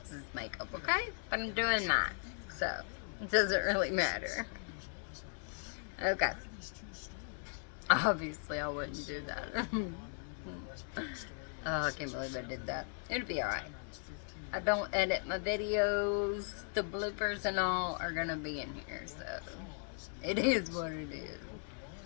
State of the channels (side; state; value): right; silent; 53 dB below the other